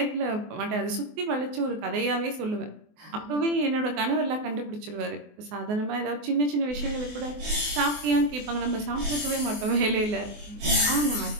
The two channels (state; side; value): late; left; 24 ms